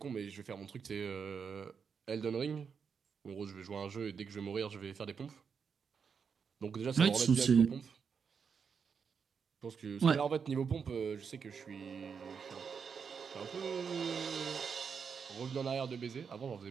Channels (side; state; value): left; quieter; 6.3 dB